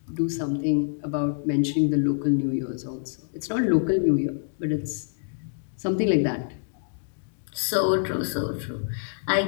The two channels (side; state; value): right; silent; digital silence